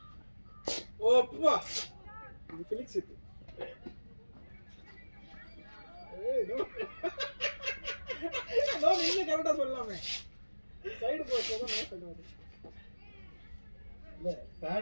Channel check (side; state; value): both; inverted; correlation -1.00